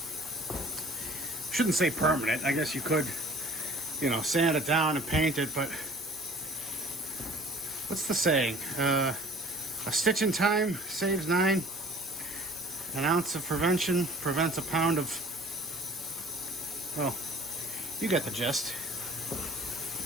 Shouldn't say permanent. I guess you could, you know, sand it down and paint it, but what's the saying? A stitch in time saves 9. An ounce of prevention prevents a pound of... Well, you get the gist.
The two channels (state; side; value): normal; both; correlation 0.50